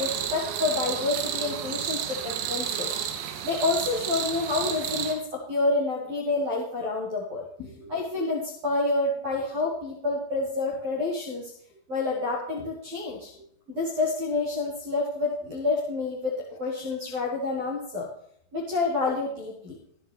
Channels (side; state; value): left; late; 12 ms